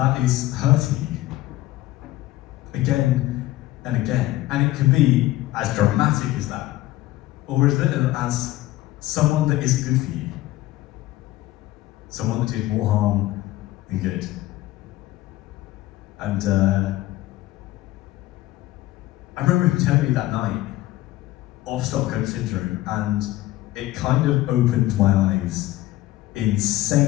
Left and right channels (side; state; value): right; quieter; 16.4 dB